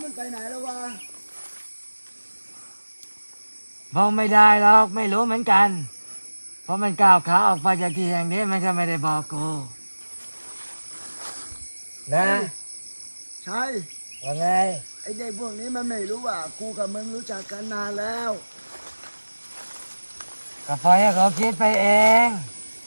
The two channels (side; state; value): both; inverted; correlation -1.00